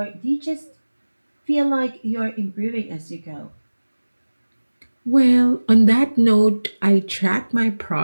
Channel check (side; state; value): both; inverted; correlation -1.00